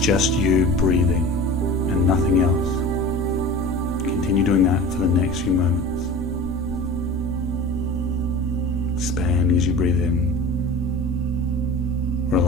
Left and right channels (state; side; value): noise; right; hum, 28 dB below the sound